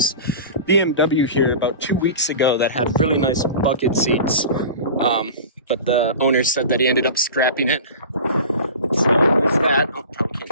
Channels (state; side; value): inverted; both; correlation -0.35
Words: BMW here about 2 weeks ago that had really nice bucket seats, but the owner said that he ended up scrapping it. So there's that. Oh, probably